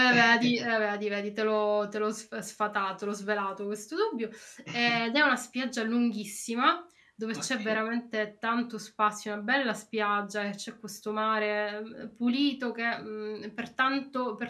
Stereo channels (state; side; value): identical; both; correlation 1.00